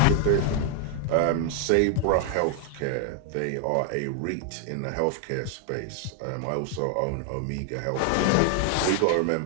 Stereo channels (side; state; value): both; different; correlation 0.00